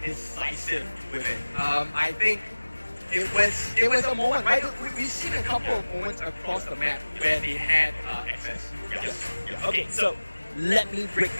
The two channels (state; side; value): inverted; both; correlation -1.00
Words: decisive with it. I think it was a moment, right? We've seen a couple of moments across the map where they had access. Yes. Okay, so let me break